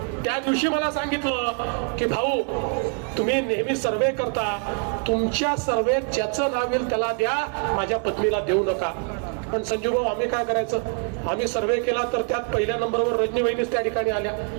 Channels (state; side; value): quieter; left; 39.1 dB